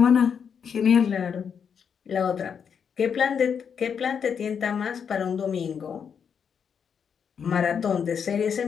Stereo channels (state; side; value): quieter; right; 7.1 dB